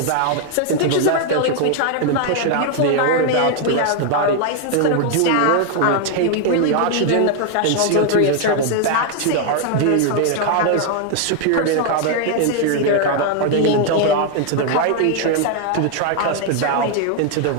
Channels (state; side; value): different; both; correlation 0.00